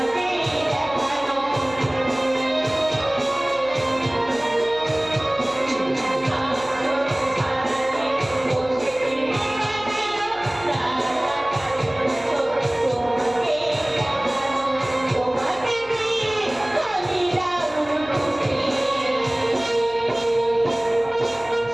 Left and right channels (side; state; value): left; noise; hum, 23 dB below the sound